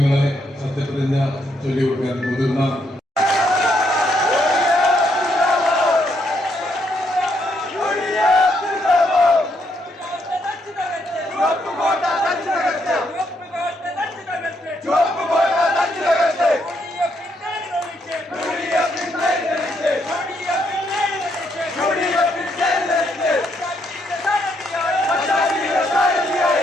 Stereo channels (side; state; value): both; normal; correlation 0.75